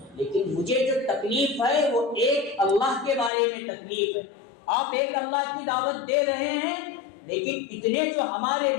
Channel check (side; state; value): right; drops out; at 3.3 s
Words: لیکن مجھے جو تکلیف ہے وہ ایک اللہ کے بارے میں تکلیف ہے۔ آپ ایک اللہ کی دعوت دے رہے ہیں لیکن اتنے جو ہمارے